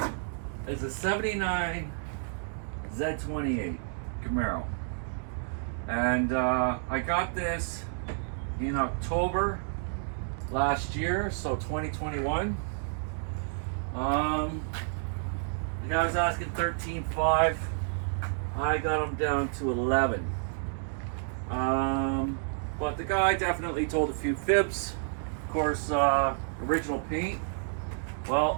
is a 79 Z28 Camaro. And I got this in October last year, so 2021. The guy was asking 13.5. I got him down to 11. But the guy definitely told a few fibs. Of course, original paint.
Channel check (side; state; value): left; silent; digital silence